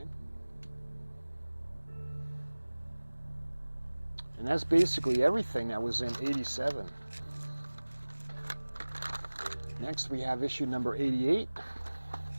And that's basically everything that was in 87. Next we have issue number 88.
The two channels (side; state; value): both; inverted; correlation -1.00